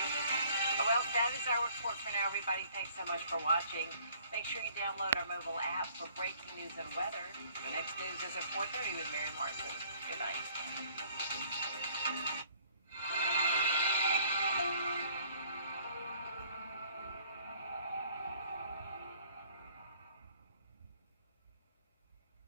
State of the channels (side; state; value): both; inverted; correlation -0.58